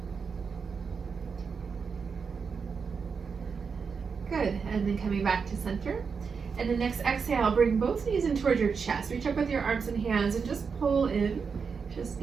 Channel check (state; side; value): quieter; left; 5.6 dB